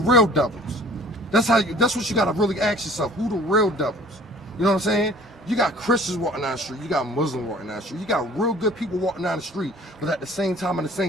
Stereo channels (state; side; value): normal; both; correlation 0.50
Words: devils? That's what you gotta really ask yourself. Who the real devils? You know what I'm saying? You got Christians walking down the street, you got Muslims walking down the street, you got real good people walking down the street, but at the same time, in the